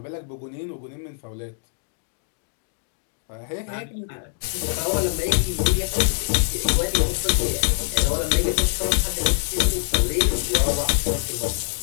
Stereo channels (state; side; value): silent; right; digital silence